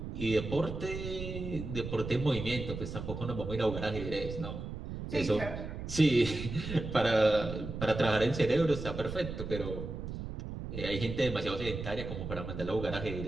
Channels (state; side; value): noise; right; rumble, 7 dB below the sound